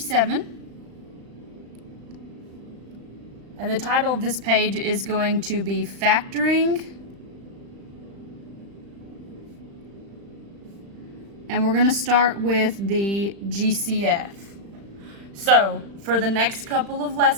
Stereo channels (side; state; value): left; late; 35 ms